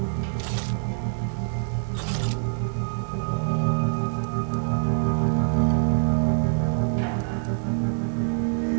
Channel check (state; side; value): silent; left; 59 dB below the other